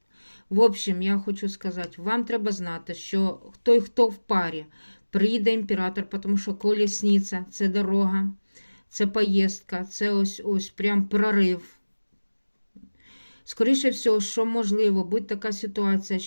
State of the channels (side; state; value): both; inverted; correlation -1.00